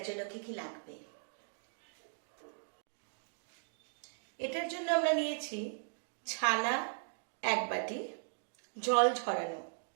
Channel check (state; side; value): silent; left; digital silence